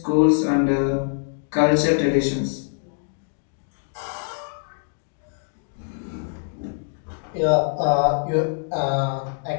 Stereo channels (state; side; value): silent; right; digital silence